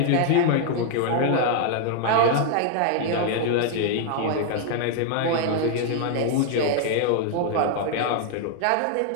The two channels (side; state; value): both; different; correlation 0.00